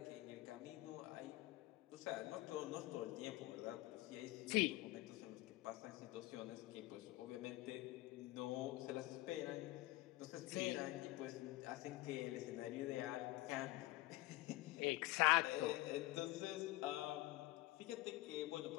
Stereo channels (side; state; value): right; quieter; 18.8 dB